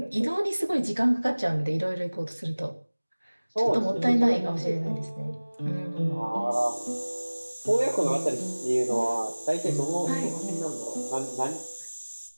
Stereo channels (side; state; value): both; inverted; correlation -1.00